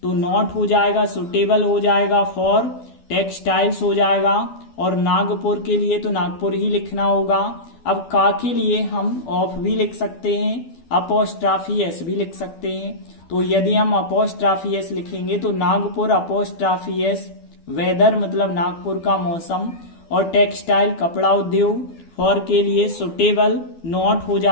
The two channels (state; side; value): late; right; 12 ms